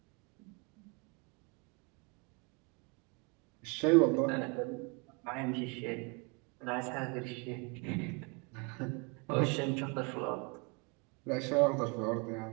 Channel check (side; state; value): left; quieter; 30.2 dB